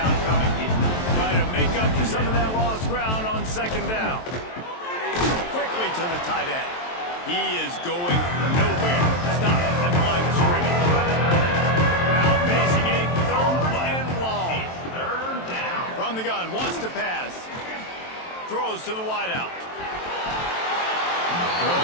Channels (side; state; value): right; late; 23 ms